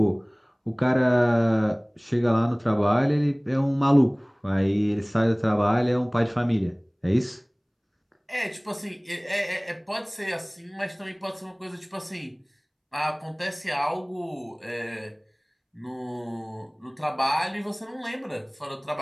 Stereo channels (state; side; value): identical; both; correlation 1.00